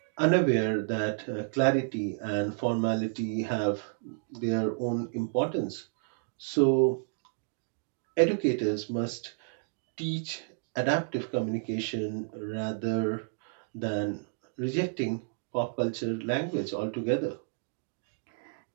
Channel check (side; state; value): left; silent; digital silence